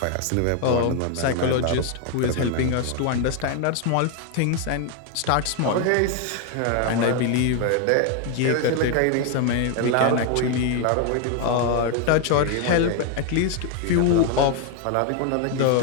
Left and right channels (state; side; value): different; both; correlation 0.01